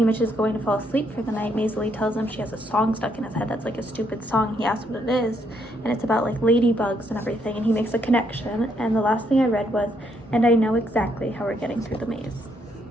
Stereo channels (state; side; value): normal; both; correlation 0.73